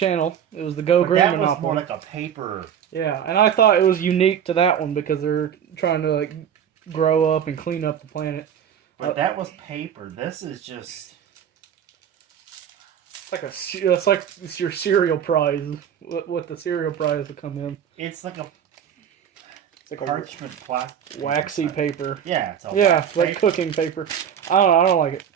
It was the Go Green Monopoly. That was more like a paper. Yeah, and I thought it was unique to that one because they're trying to like grow up and clean up the planet. But that was paper. This is just... It's like it's your cereal prize. What the cereal prize would come in. It's like a... It's like parchment plastic. Waxy paper. Yeah, it's it's like cooking paper. I don't like it.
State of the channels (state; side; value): quieter; left; 8.7 dB